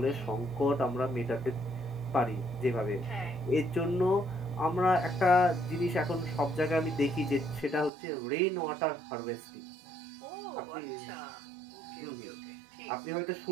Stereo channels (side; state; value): left; drops out; at 7.9 s